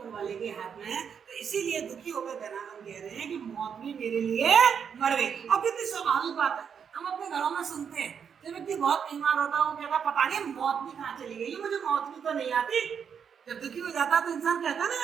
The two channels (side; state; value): left; quieter; 7.2 dB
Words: वाले के हाथ में है। तो इसीलिए दुखी होकर धनानंद कह रहे हैं कि मौत भी मेरे लिए मर गई। और कितनी स्वाभाविक बात है, हम अपने घरों में सुनते हैं जब व्यक्ति बहुत बीमार होता है वो कहता है पता नहीं मौत भी कहाँ चली गई, मुझे मौत भी तो नहीं आती। जब दुखी हो जाता है तो इंसान कहता है ना